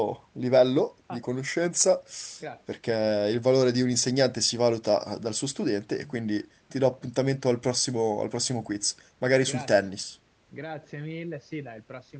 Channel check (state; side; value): identical; both; correlation 1.00